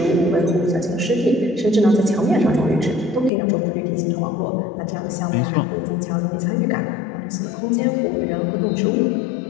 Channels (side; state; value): right; drops out; at 3.3 s